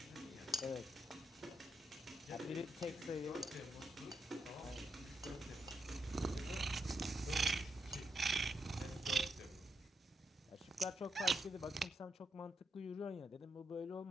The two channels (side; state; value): both; normal; correlation 0.81